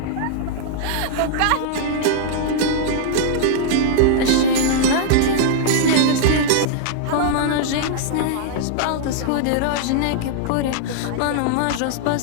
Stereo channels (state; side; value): different; both; correlation -0.01